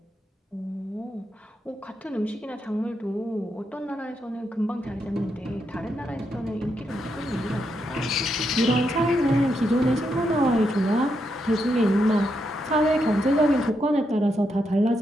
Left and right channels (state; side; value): normal; both; correlation 0.81